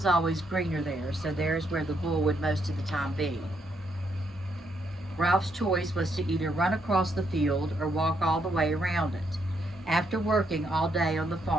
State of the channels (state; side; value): normal; both; correlation 0.76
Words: always greener there, so there's where the bull would most of the time be. Ralph's choice was to either run across the field or walk all the way around it. After working all day on the